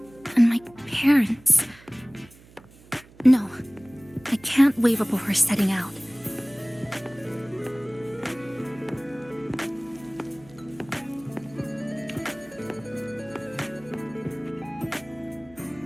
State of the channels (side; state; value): right; noise; hum, 24 dB below the sound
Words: and my parents. No, I can't waver before setting out.